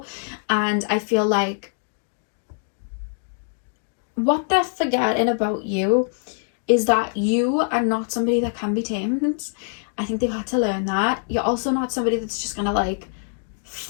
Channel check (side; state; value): right; silent; 58 dB below the other